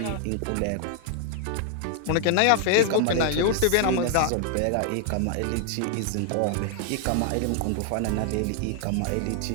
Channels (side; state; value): both; different; correlation 0.00